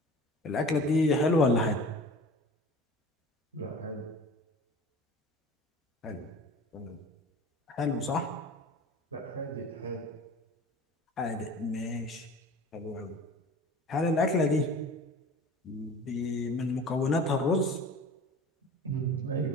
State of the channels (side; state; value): both; normal; correlation 0.41